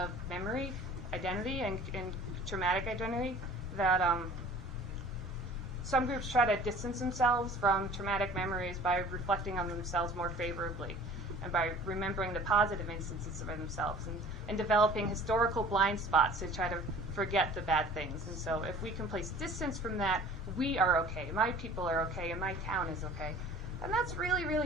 memory, identity, and traumatic identity, that some groups try to distance themselves from traumatic memories by reflecting on themselves more favorably and by remembering the positive instances of themselves and developing historical blind spots to try to forget the bad things. And so if we can place distance from that, we are okay, my people are okay, and my town is okay. And that's really,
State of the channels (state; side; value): normal; both; correlation 0.47